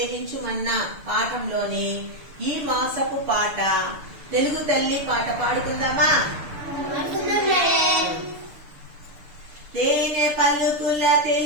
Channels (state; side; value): late; left; 6.7 ms